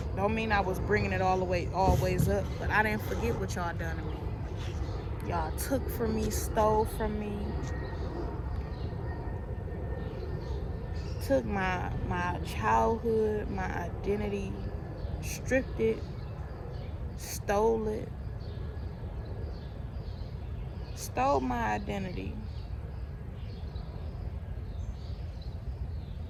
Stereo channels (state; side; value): identical; both; correlation 1.00